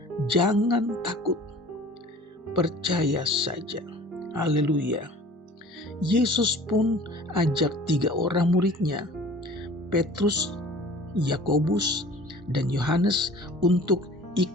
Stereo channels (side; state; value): both; normal; correlation 0.46